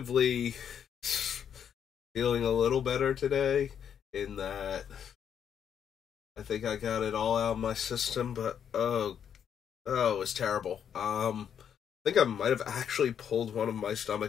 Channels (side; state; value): right; quieter; 8.4 dB